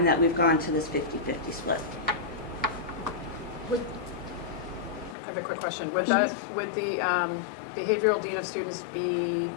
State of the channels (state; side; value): drops out; right; at 5.2 s